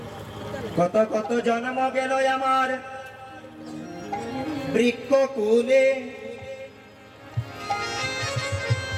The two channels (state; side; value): identical; both; correlation 1.00